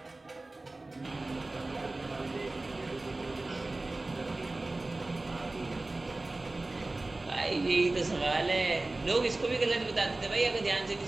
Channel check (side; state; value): left; quieter; 3.0 dB